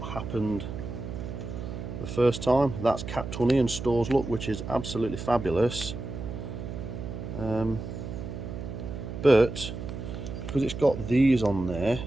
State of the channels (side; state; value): right; noise; hum, 7 dB below the sound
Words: happened the first time. That's capped honey and stores look, which is absolutely fabulous. But because it's got these on there,